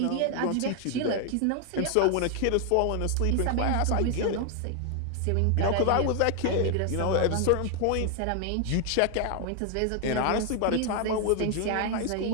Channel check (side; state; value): both; different; correlation 0.00